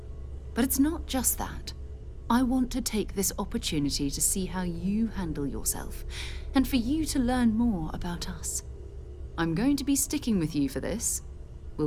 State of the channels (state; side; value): identical; both; correlation 1.00